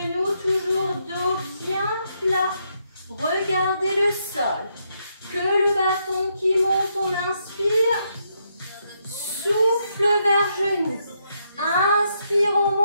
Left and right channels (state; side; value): inverted; both; correlation -0.78